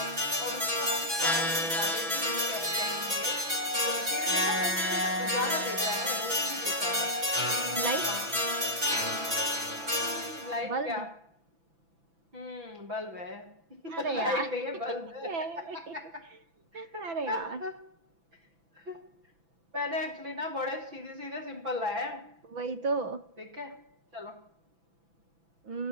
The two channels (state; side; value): late; left; 6.0 ms